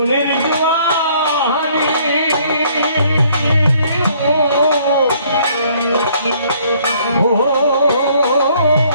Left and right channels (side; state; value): both; inverted; correlation -0.62